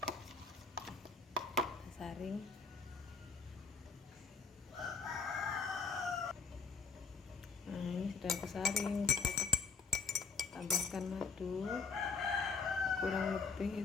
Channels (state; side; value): quieter; right; 4.8 dB